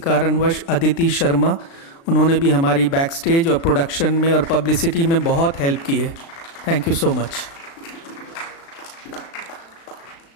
अदिति शर्मा। उन्होंने भी हमारी बैक स्टेज और प्रोडक्शन में और पब्लिसिटी में बहुत हेल्प की है। Thank you so much.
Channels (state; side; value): late; right; 36 ms